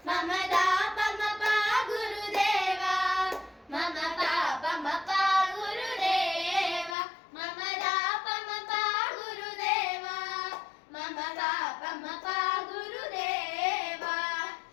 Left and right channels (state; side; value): drops out; right; at 7.0 s